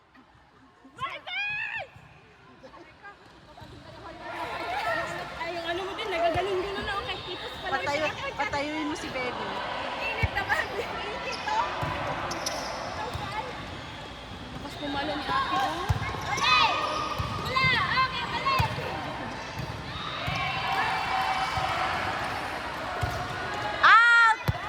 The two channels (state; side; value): identical; both; correlation 1.00